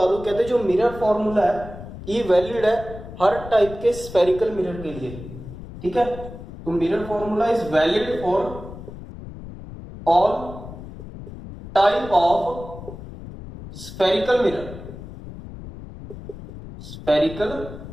दूं, कहते हैं जो मिरर फॉर्मूला है ये वैलिड है हर टाइप के स्फेरिकल मिरर के लिए। ठीक है, तो mirror formula is valid for all type of spherical mirrors.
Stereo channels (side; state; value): left; noise; rumble, 13 dB below the sound